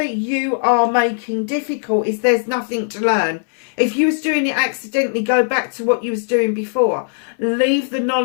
you are making difficult is there's nothing to learn. If you was doing it accidentally, go back to what you was doing before. Leave the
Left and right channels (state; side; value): silent; right; 62 dB below the other